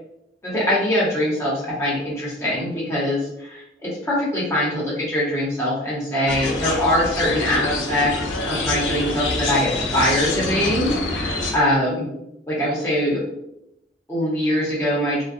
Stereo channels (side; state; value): both; normal; correlation 0.36